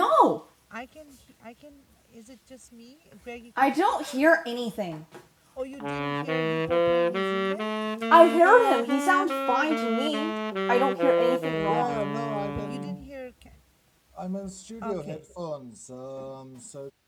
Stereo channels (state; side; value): identical; both; correlation 1.00